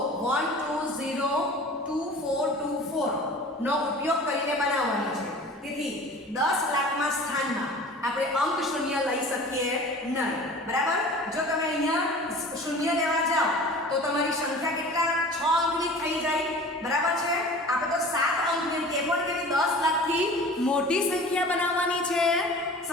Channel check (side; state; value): both; normal; correlation 0.41